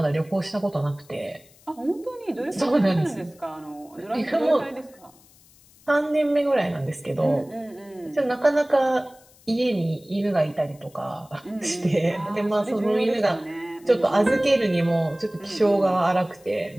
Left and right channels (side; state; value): left; noise; hiss, 27 dB below the sound